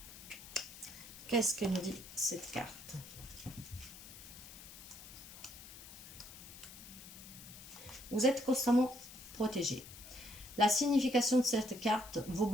Qu'est-ce que nous dit cette carte? Vous êtes constamment protégés. La signification de cette carte, vos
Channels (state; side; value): noise; left; hiss, 15 dB below the sound